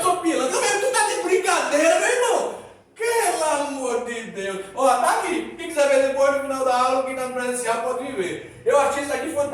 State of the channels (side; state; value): both; identical; correlation 1.00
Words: sou pilantra. Tu tá de brincadeira, meu irmão. Pelo amor de Deus. Ó, tá aqui. Quem quiser ver depois no final da aula, quem tá no presencial pode vir ver. Eu achei isso aqui